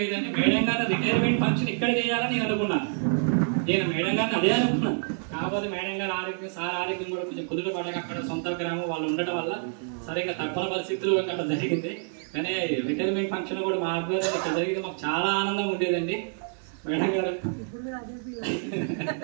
అయితే మేడం గారి రిటైర్మెంట్ ఫంక్షన్ ఇక్కడ చేయాలని నేను అనుకున్నాను. నేను మేడం గారిని అదే అనుకున్నాను. కాకపోతే మేడం గారి ఆరోగ్యం, సార్ ఆరోగ్యం కూడా కొంచెం కుదుట పడక అక్కడ సొంత గ్రామం వాళ్ళు ఉండటం వల్ల సరిగ్గా తప్పని పరిస్థితులు అక్కడ జరిగింది. కానీ రిటైర్మెంట్ ఫంక్షన్ కూడా మా ఆధ్వర్యంలో ఇక్కడ జరిగింది. మాకు చాలా ఆనందంగా ఉండేదండి. మేడం గారు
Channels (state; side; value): silent; left; 60 dB below the other